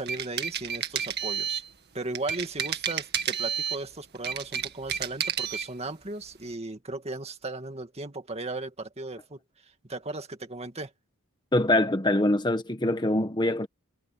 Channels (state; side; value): normal; both; correlation 0.49